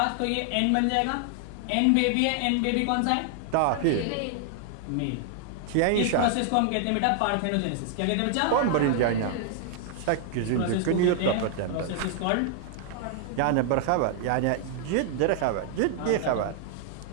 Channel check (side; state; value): both; different; correlation -0.01